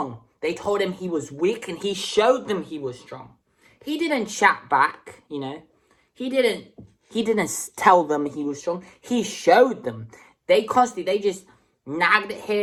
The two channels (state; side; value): identical; both; correlation 1.00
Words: They told him he was weak and he showed them he was strong. He didn't chat back, you know. He didn't tell them he was strong. He showed them. They just nagged at